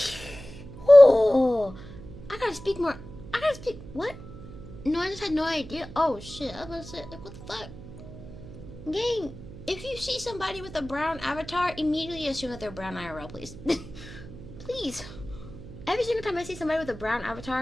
Oh, I gotta speak more. What? No, I just had no idea. Oh, shit. I was about to say, like, what the fuck? Gang, if you see somebody with a brown avatar, immediately assume that they're brown IRL, please. Please. Every single time I see somebody with a brown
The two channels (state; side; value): noise; right; hum, 14 dB below the sound